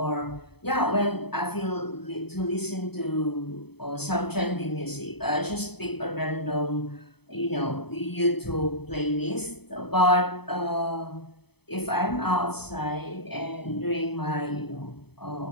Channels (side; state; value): right; late; 0.97 ms